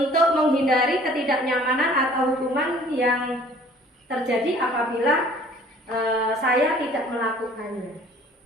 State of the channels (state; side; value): normal; both; correlation 0.53